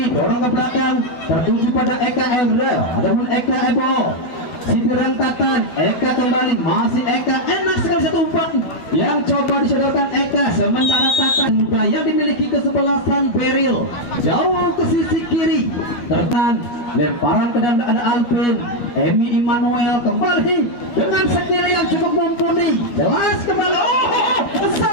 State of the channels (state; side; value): late; right; 12 ms